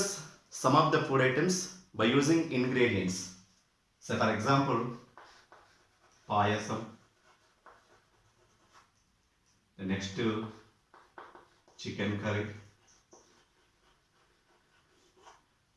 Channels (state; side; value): identical; both; correlation 1.00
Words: some of the food items by using ingredients. So for example, payasam. The next chicken curry.